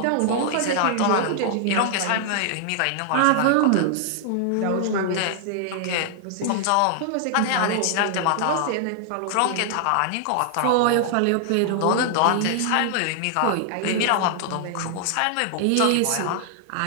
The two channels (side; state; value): both; different; correlation 0.00